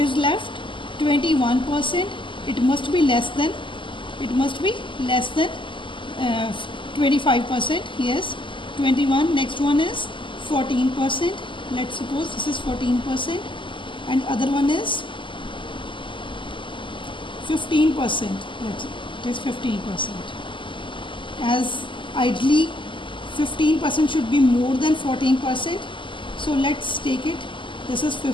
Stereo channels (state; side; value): late; right; 0.24 ms